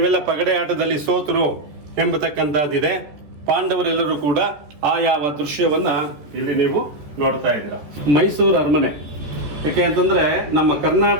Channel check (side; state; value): left; late; 14 ms